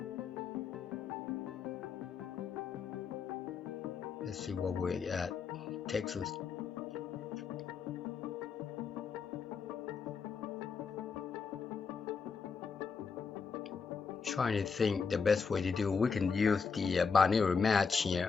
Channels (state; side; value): quieter; right; 5.6 dB